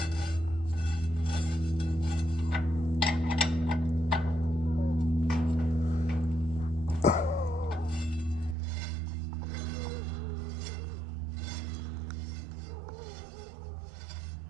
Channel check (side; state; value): left; drops out; at 8.6 s